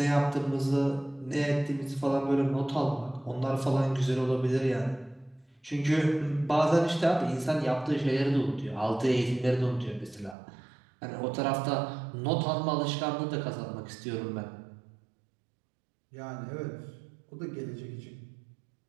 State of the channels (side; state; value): left; drops out; at 10.4 s